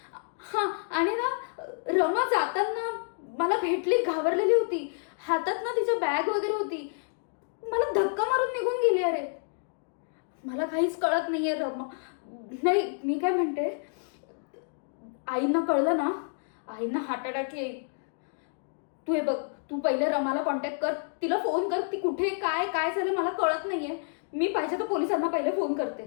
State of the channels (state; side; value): silent; right; digital silence